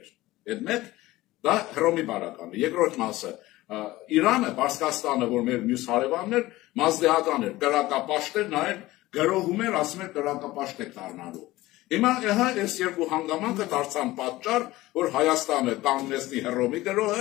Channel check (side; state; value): right; quieter; 18.0 dB